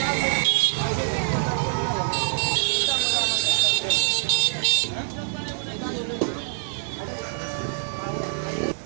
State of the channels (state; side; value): silent; left; digital silence